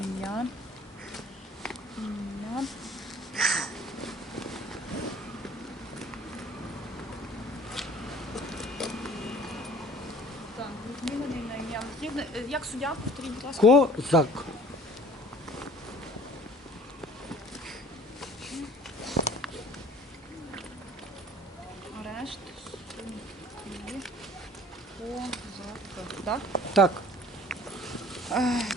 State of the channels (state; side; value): normal; both; correlation 0.50